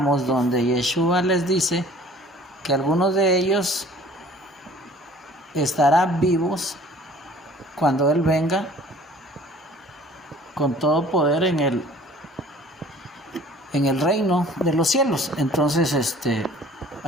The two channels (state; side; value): normal; both; correlation 0.50